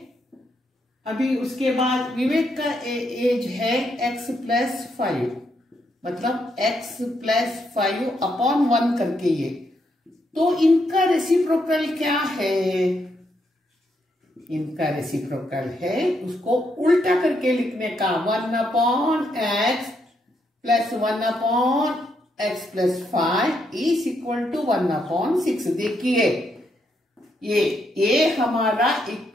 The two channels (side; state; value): both; normal; correlation 0.78